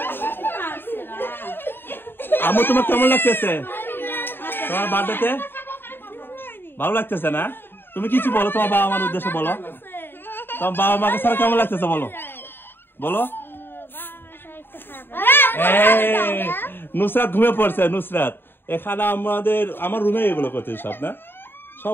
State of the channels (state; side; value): late; right; 0.10 ms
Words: আমু তোমার কেমন লাগতেছে তোমার বার্থডেতে ভালো লাগতেছে না তুমি কিছু বলো তোমার বাবা মার উদ্দেশ্যে বলো তোমার বাবা মাকে ছাড়া কেমন লাগতেছে বলো বলো নুসরাত ঘুমিয়ে পড়ছে নুসরাত এখানে আমার রুমে এগুলো করতে সব না